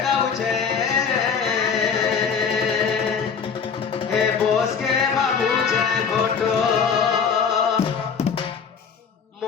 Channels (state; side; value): quieter; right; 6.3 dB